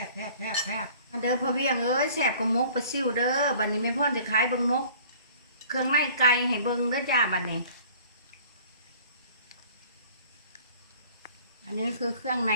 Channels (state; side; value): inverted; both; correlation -0.50